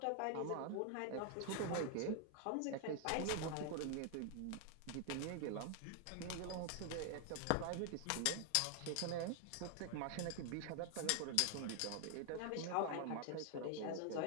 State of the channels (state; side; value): different; both; correlation 0.00